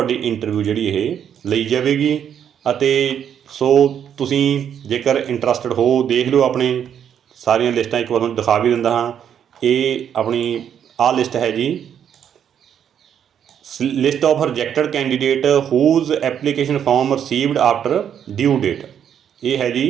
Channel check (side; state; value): left; quieter; 8.9 dB